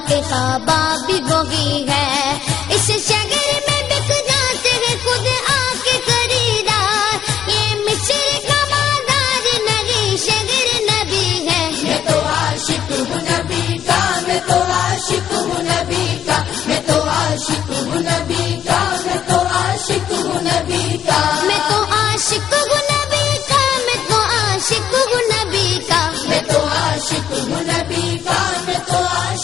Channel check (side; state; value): right; quieter; 9.6 dB